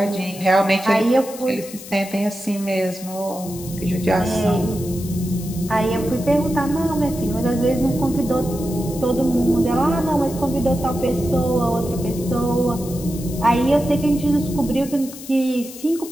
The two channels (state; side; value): noise; left; hiss, 14 dB below the sound